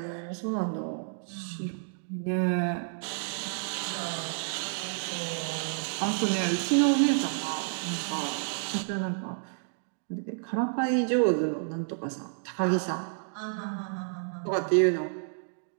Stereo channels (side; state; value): left; silent; digital silence